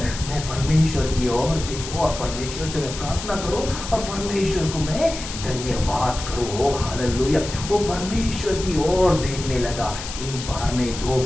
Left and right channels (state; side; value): noise; left; hiss, 9 dB below the sound